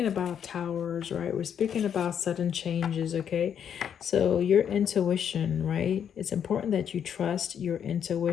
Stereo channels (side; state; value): right; quieter; 8.5 dB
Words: about towers, right? We're speaking about sudden changes, okay? So your intuition, right? It's important that you trust your